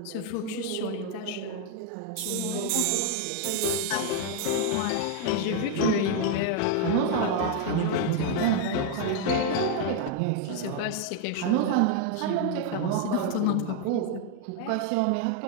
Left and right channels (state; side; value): different; both; correlation 0.01